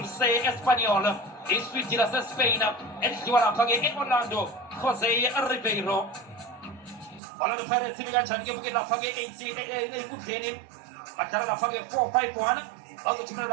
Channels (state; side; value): drops out; left; at 7.2 s